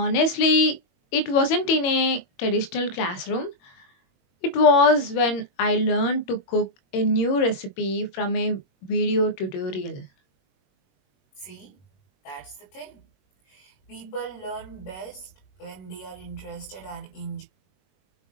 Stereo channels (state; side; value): late; right; 21 ms